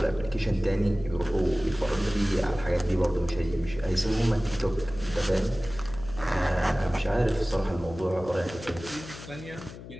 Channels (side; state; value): left; noise; hum, 14 dB below the sound